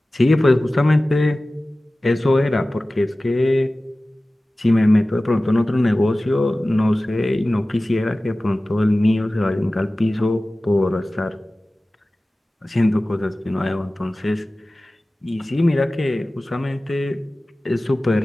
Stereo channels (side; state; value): both; normal; correlation 0.97